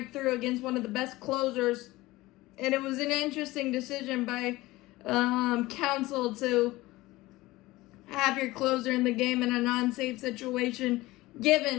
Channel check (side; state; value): right; quieter; 19.1 dB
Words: through against one of the best closers. And it was an interesting decision by counsel to have your closer in the game in a non-safe situation,